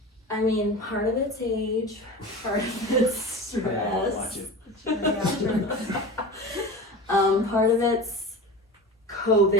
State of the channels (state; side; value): normal; both; correlation 0.31